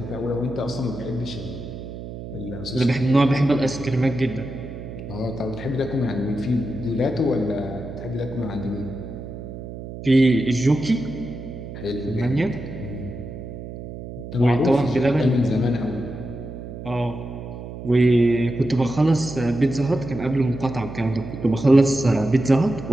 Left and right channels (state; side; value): noise; right; hum, 10 dB below the sound